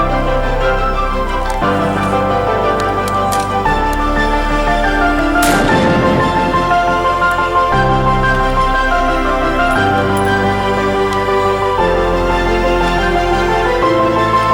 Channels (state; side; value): identical; both; correlation 1.00